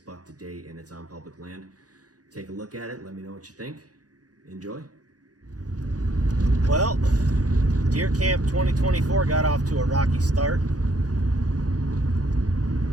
buck to date and it's on public land. Take a look at it, let me know what you think. Enjoy. Well, Deer Camp 2024 got off to a rocky start.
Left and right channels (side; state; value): left; late; 0.68 ms